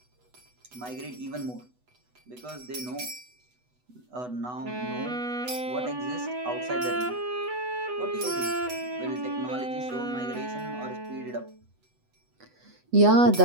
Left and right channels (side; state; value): left; late; 8.1 ms